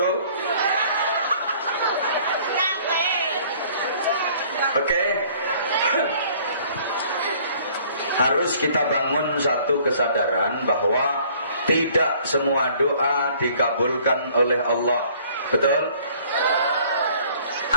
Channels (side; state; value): both; inverted; correlation -0.56